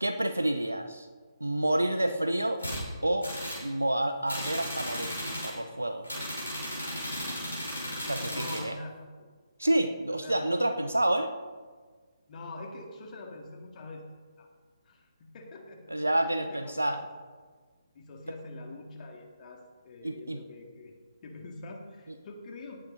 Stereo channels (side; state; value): both; inverted; correlation -0.92